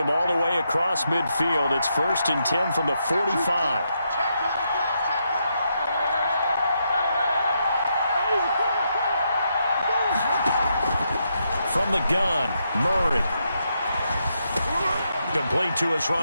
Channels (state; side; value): inverted; both; correlation -0.81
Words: all the way across midfield. It's 1st and 10 from the 45. From the gun, Murray. Complete to his